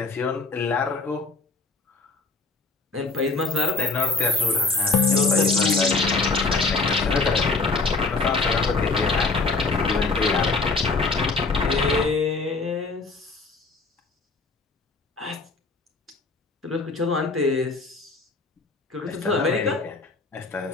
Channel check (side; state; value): right; quieter; 3.8 dB